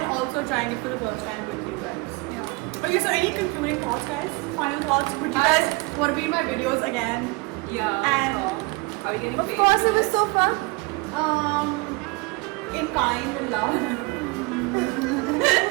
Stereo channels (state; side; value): quieter; left; 25.6 dB